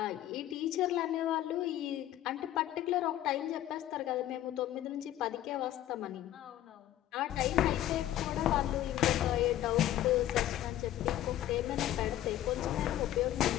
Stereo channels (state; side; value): quieter; right; 13.0 dB